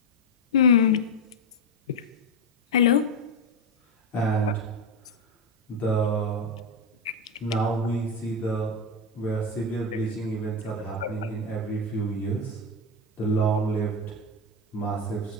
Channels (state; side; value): normal; both; correlation 0.10